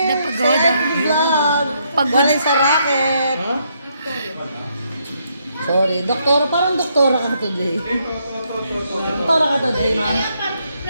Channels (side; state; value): both; inverted; correlation -0.75